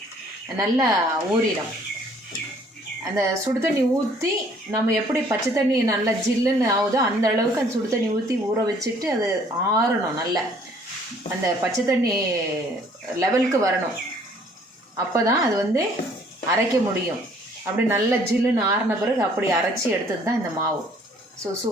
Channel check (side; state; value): both; normal; correlation 0.59